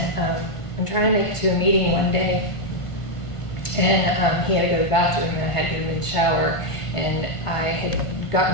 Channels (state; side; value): late; right; 1.5 ms